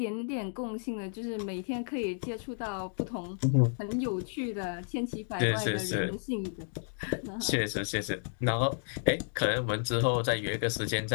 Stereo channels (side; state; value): right; silent; digital silence